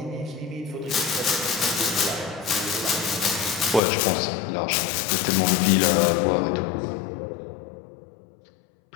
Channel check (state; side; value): drops out; right; at 3.8 s